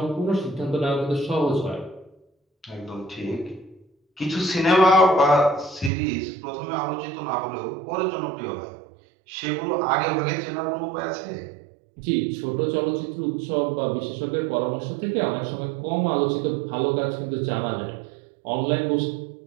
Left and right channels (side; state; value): left; drops out; at 5.9 s